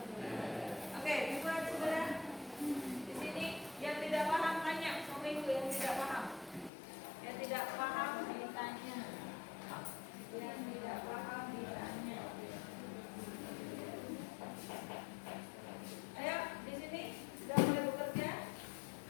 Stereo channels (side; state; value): right; drops out; at 6.7 s